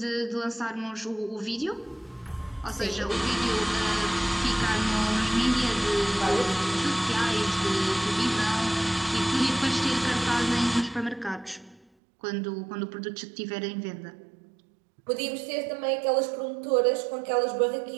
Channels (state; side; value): drops out; left; at 11.9 s